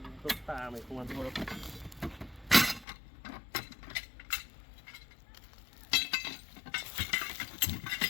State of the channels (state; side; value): drops out; right; at 2.9 s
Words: ta mày không ăn thua đâu.